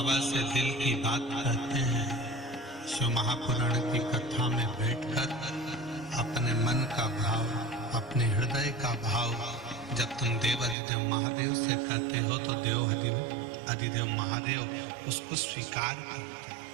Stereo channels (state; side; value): drops out; left; at 10.8 s